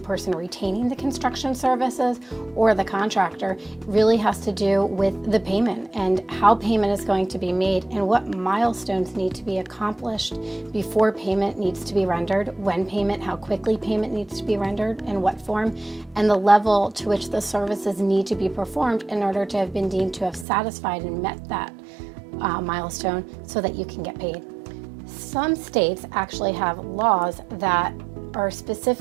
person retaining the construction services or the contractor, really has to do with the payment and how payment is going to be made and what milestones need to be accomplished before payment needs to be rendered, when payment, how quickly payment needs to be rendered, in what form, and the level to which the services need to be performed in order to have been deemed to have satisfied and met that milestone so that you can get paid. Some states actually have laws that are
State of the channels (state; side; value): drops out; left; at 20.5 s